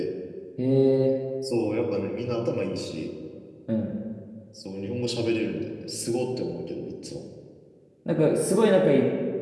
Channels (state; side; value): identical; both; correlation 1.00